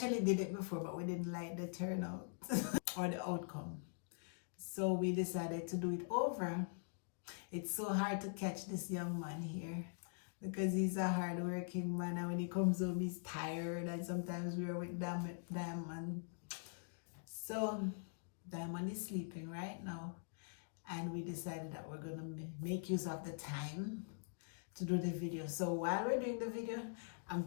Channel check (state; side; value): silent; right; digital silence